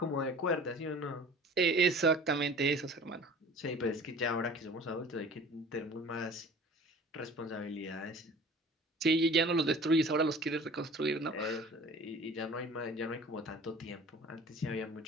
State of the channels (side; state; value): both; normal; correlation 0.44